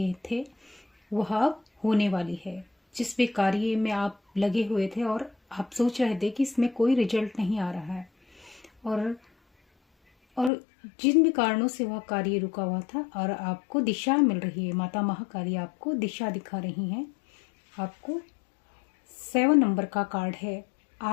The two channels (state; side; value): drops out; right; at 10.5 s